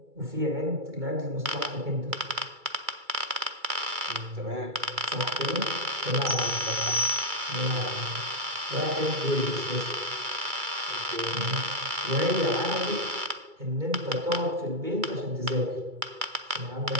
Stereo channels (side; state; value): left; late; 2.3 ms